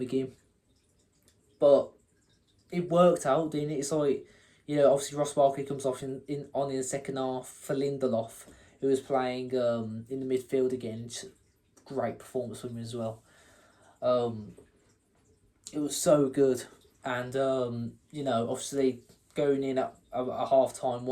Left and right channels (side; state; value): both; identical; correlation 1.00